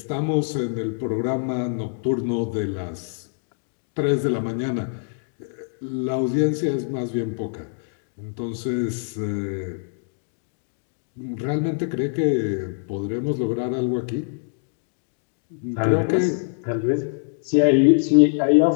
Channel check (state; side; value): silent; right; digital silence